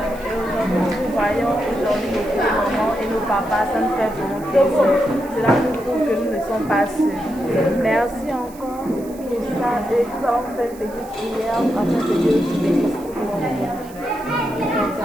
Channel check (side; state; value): right; noise; hiss, 22 dB below the sound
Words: Et aujourd'hui, nous voyons aujourd'hui nos petits mamans et nos papas, ça nous fait vraiment plaisir. Cela nous prouve que nous ne sommes pas seuls. Merci encore pour ça. Et nous avons fait une petite prière afin que Dieu nous bénisse.